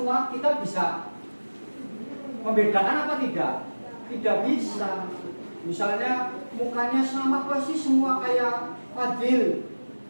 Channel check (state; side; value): inverted; both; correlation -1.00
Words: kita bisa membedakan apa tidak? Tidak bisa. Misalnya mukanya sama persis semua kayak Fadil,